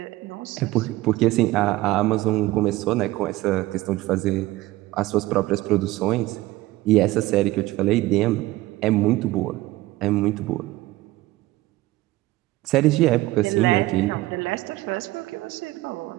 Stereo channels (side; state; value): left; quieter; 18.2 dB